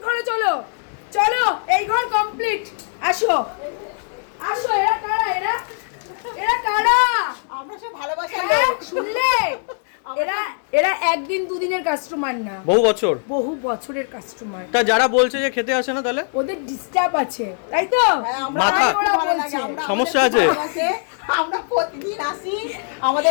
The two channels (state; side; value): silent; right; 65 dB below the other